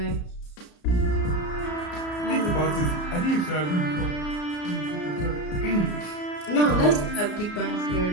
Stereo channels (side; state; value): right; late; 34 ms